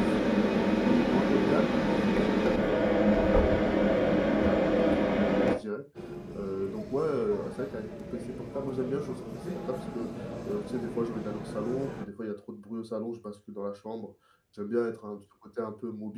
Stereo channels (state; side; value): identical; both; correlation 1.00